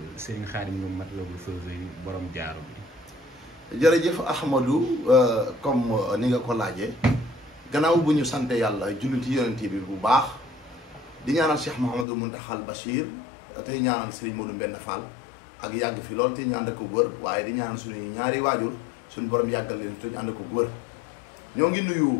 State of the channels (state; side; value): drops out; right; at 12.1 s